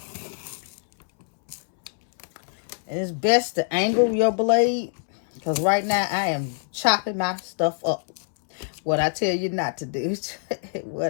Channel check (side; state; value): right; silent; 62 dB below the other